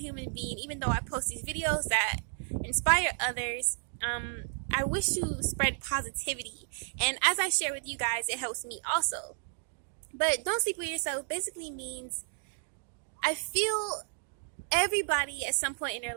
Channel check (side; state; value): left; silent; digital silence